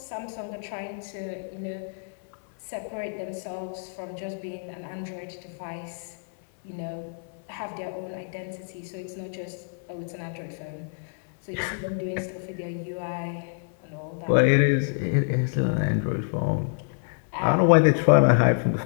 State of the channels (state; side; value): silent; right; 60 dB below the other